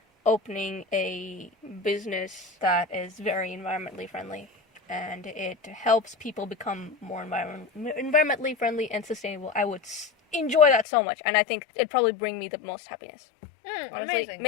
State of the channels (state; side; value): drops out; right; at 10.9 s